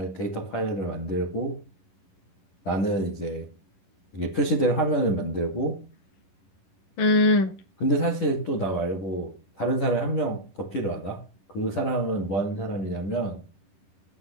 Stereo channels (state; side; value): late; right; 11 ms